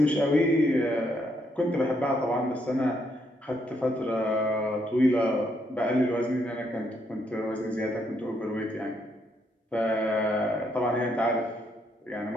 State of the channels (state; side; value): normal; both; correlation 0.75